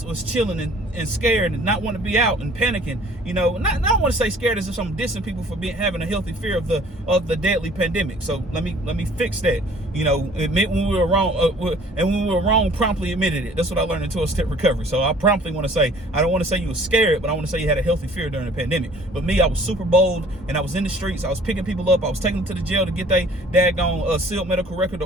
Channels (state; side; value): normal; both; correlation 0.53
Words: chilling and scared and not want to be out and panicking. I don't want to say scared as if I'm dissing people for having a healthy fear of the deadly pandemic. So let me fix that. Admit when we were wrong, and when we were wrong, promptly admitted it. That's what I learned in 12-step recovery. So I promptly want to say, I don't want to say you were scared, but I want to say you had a healthy fear during the pandemic. But me, I was super bold, and I was in the streets. I was picking people up. I was taking them to the jail to get their daggone sealed medical record